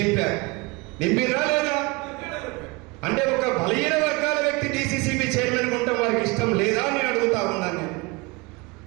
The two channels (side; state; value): left; quieter; 25.6 dB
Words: దింపిరా లేదా? అంటే ఒక బలహీన వర్గాల వ్యక్తి డిసిసిబి చైర్మన్ ఉంటే వారికి ఇష్టం లేదా అని అడుగుతా ఉన్నాను నేను.